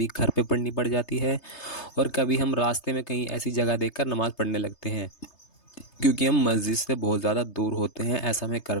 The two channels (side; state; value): right; late; 3.3 ms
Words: گھر پہ پڑھنی پڑ جاتی ہے، اور کبھی ہم راستے میں کہیں ایسی جگہ دیکھ کر نماز پڑھنے لگتے ہیں کیونکہ ہم مسجد سے بہت زیادہ دور ہوتے ہیں۔ ایسا ہمیں